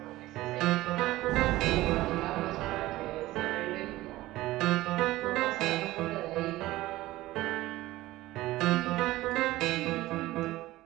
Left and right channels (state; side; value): quieter; left; 17.2 dB